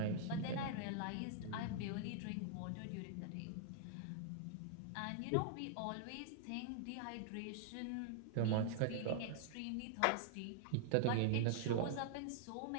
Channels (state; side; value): different; both; correlation -0.01